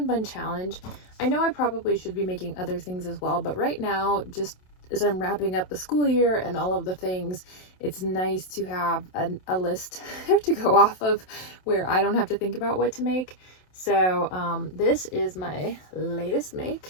Challenge. I know I probably should be making other things as well, but right now, just as I'm wrapping up the school year and all of the things, it's nice to have a list to go off of where I don't have to think about what to make. So this is my latest make.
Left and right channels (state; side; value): late; right; 27 ms